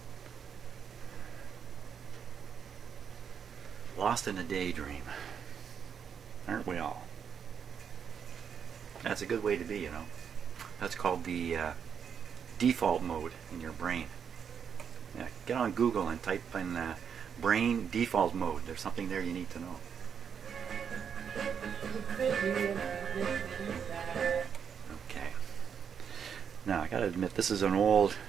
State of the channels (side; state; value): left; quieter; 7.4 dB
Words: Lost in a daydream. Aren't we all? That's a good way to be, you know. That's called the default mode in your brain. Yeah, get on Google and type in brain default mode. There's something there you need to know. Okay. Now, I gotta admit, this is an old,